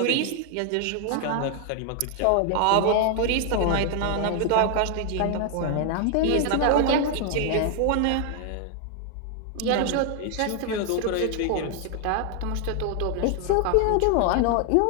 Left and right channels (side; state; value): both; different; correlation 0.00